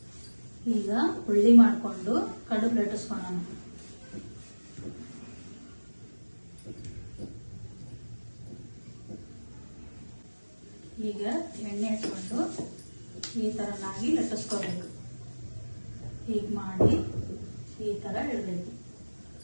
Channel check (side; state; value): both; inverted; correlation -1.00